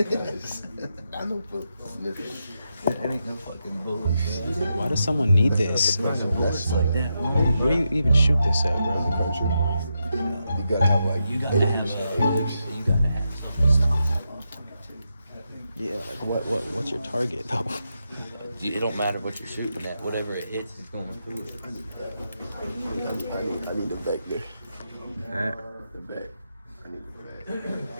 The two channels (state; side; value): inverted; both; correlation -0.85